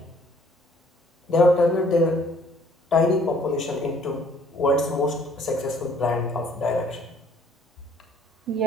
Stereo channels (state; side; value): normal; both; correlation 0.59